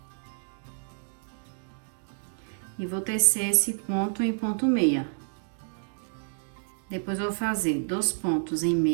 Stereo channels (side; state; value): left; silent; digital silence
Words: E vou tecer esse ponto em ponto meia. Depois eu vou fazer 2 pontos em